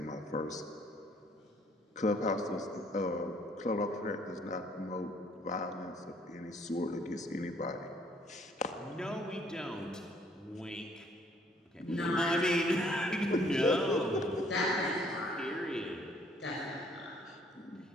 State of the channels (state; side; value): normal; both; correlation 0.62